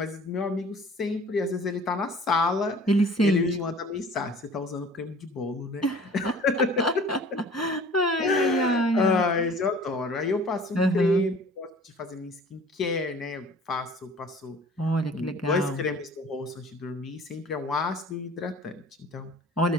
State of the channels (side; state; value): both; normal; correlation 0.48